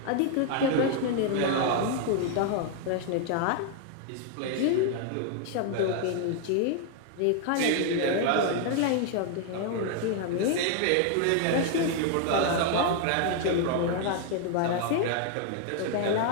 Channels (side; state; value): both; different; correlation 0.00